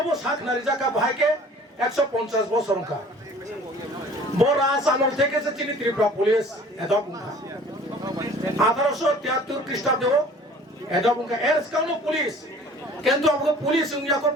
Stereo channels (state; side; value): normal; both; correlation 0.49